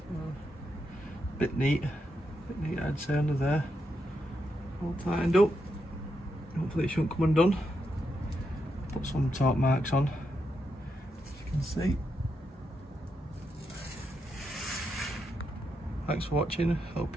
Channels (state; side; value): normal; both; correlation 0.83